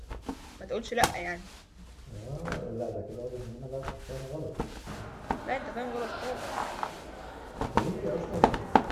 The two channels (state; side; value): identical; both; correlation 1.00